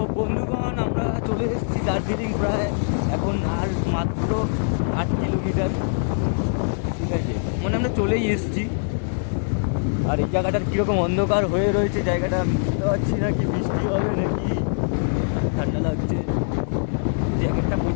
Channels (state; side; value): silent; right; digital silence